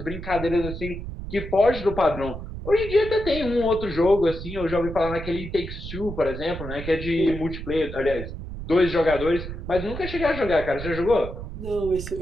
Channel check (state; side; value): noise; right; rumble, 9 dB below the sound